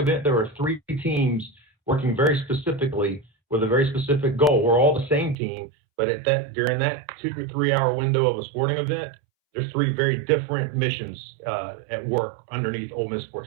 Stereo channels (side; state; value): left; drops out; at 5.4 s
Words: there are three teams working very specifically with a very specific goal. We're all the same team, but during that 2 to 3 hour window of a sporting event, there's three very different missions at work underneath Ole Miss